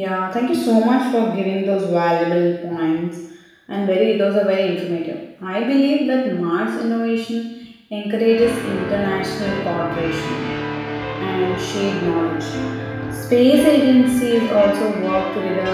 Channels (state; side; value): identical; both; correlation 1.00